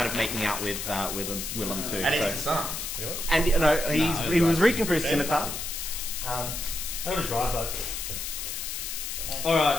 of making out with Willem too. And so. he's disarmed. You know what? And he was reaching for his scimitar. I got a drive though.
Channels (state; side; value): noise; left; hiss, 5 dB below the sound